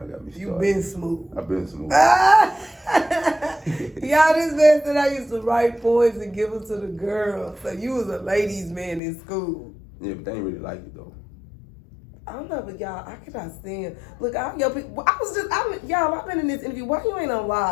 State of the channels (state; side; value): drops out; right; at 9.0 s